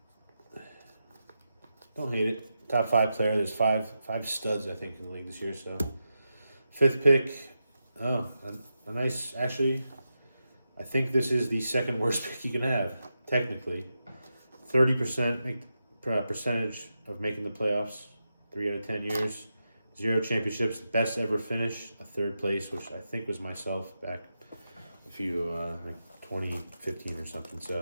Don't hate it. Top 5 player. There's five studs, I think, in the league this year. So, 5th pick. Oh, a nice. Actually, I think this is the second worst pick you can have, technically. 30% percentage of making the playoffs, 3 out of 10 years. 0 championships, best ever finish, a 3rd place, which I think was myself back a few, like 2015 or something.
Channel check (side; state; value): both; inverted; correlation -0.88